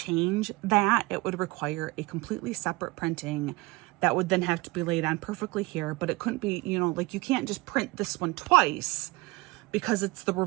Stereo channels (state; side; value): quieter; left; 23.0 dB